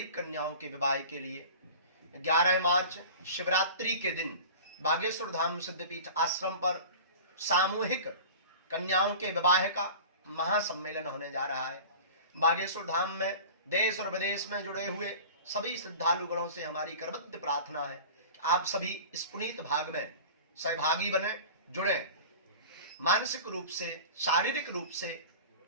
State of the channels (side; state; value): both; inverted; correlation -0.38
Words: कन्याओं के विवाह के लिए, 11 मार्च शिवरात्रि के दिन बागेश्वर धाम सिद्धपीठ आश्रम पर सामूहिक कन्याओं के विवाह का महासम्मेलन होने जा रहा है। बागेश्वर धाम में देश और विदेश में जुड़े हुए सभी श्रद्धालुगणों से हमारी करबद्ध प्रार्थना है कि आप सभी इस पुनीत भाग में सहभागी बने, जुड़े, मानसिक रूप से, शारीरिक रूप से